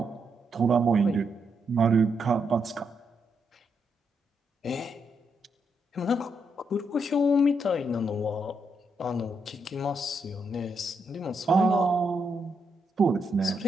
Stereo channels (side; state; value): both; normal; correlation 0.80